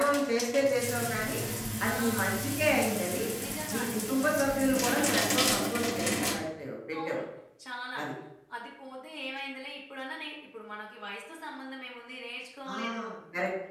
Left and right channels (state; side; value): identical; both; correlation 1.00